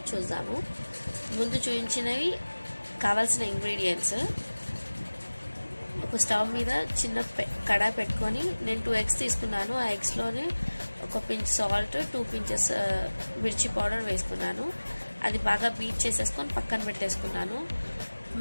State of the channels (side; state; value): both; inverted; correlation -1.00